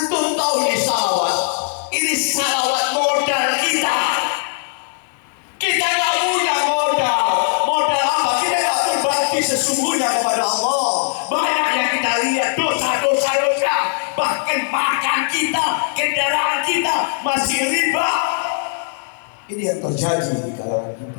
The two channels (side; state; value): right; silent; digital silence